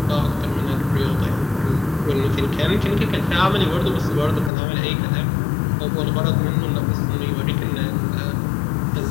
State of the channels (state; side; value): drops out; right; at 4.5 s